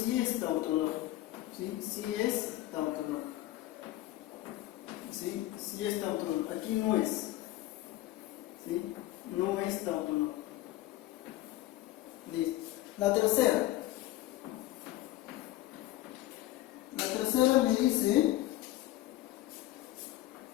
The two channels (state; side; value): quieter; right; 15.7 dB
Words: es tautológico. ¿Sí? Sí es tautológico. ¿Sí? Sí es tautológico. Aquí no es. ¿Sí? No es tautológico. Listo. La tercera. La tercera me dice